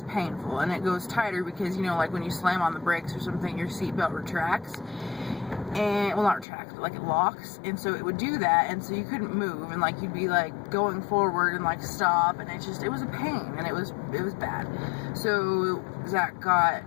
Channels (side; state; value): right; drops out; at 6.5 s